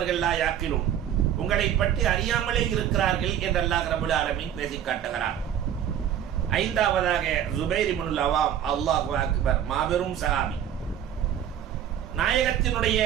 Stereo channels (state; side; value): quieter; left; 10.0 dB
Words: லா யாக்கிலும், உங்களை பற்றி அறியாமலே இருக்கிறார்கள் என்று அல்லாஹ் ரப்பல் ஆலமீன் பேசி காட்டுகிறார். 5வதாக ஜுபைர் இப்னுல் அவாம், அல்லாஹு அக்பர், மாபெரும் சஹாபி, நாயகத்தினுடைய